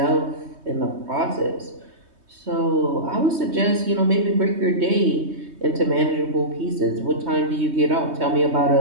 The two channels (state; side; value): late; left; 3.2 ms